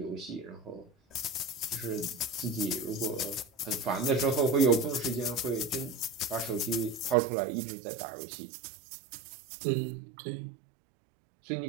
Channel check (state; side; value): drops out; left; at 7.2 s